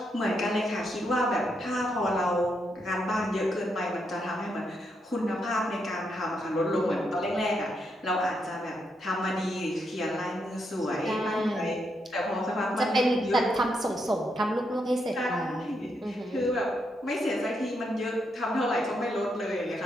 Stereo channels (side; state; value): both; normal; correlation 0.80